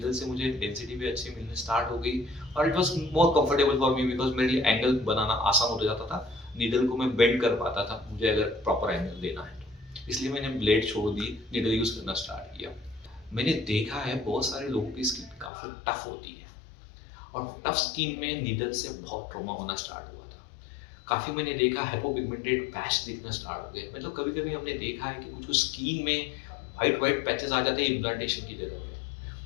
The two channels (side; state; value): right; drops out; at 15.5 s